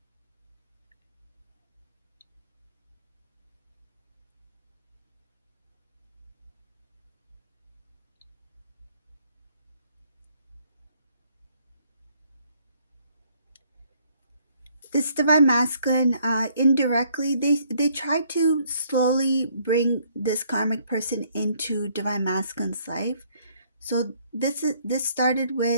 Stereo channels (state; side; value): inverted; both; correlation -0.66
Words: This Divine Masculine, indirectly, they try to slowly bring this karmic person into Divine Masculine's life. So this started